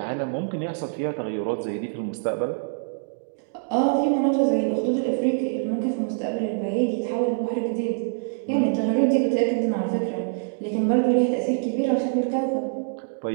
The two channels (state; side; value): silent; left; digital silence